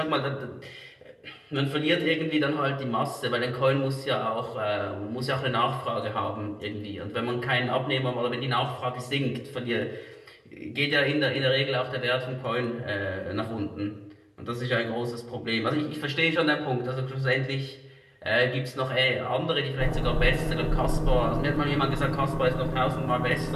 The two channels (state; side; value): identical; both; correlation 1.00